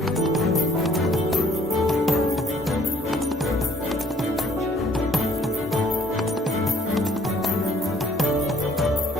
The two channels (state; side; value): normal; both; correlation 0.60